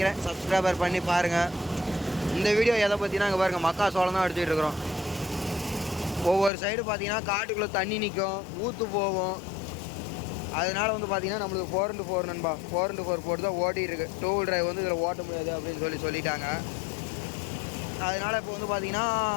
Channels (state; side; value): drops out; right; at 6.5 s